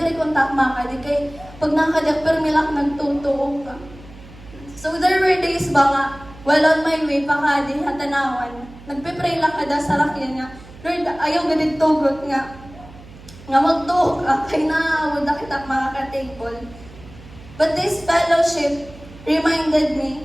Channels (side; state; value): right; noise; hum, 19 dB below the sound